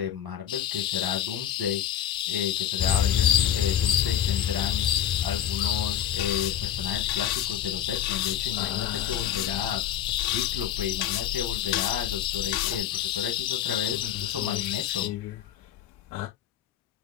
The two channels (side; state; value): right; quieter; 10.4 dB